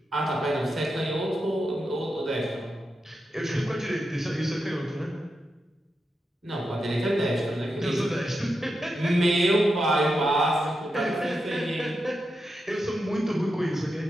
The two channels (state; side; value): normal; both; correlation 0.87